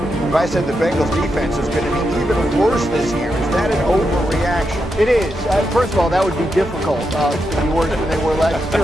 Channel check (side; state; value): both; normal; correlation 0.85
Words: If I said the Bengals defense is going to be even worse this year, is that an overreaction? It is. First of all, that would be difficult to be worse than they were last year